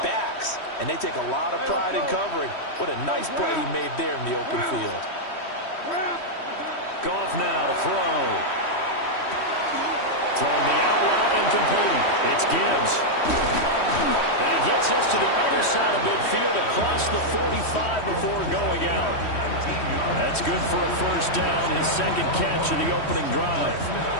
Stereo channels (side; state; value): right; late; 3.1 ms